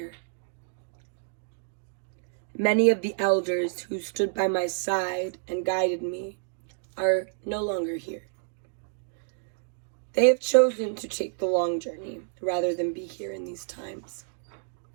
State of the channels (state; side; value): silent; left; digital silence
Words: Many of the elders who stood by my side and guided me are no longer here. They have chosen to take the long journey rather than be here in these times.